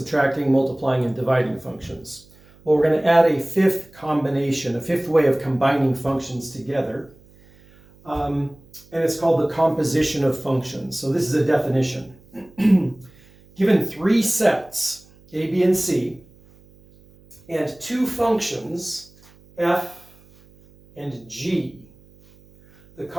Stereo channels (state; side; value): noise; right; hum, 27 dB below the sound